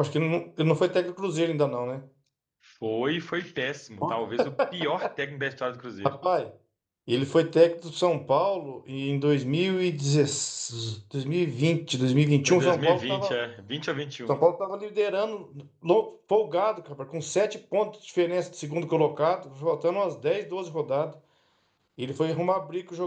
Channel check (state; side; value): identical; both; correlation 1.00